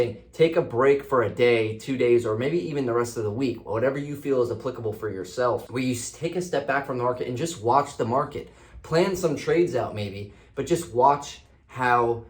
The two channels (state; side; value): identical; both; correlation 1.00